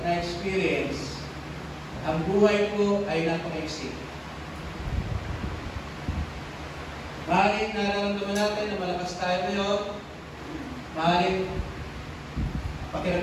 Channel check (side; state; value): both; identical; correlation 1.00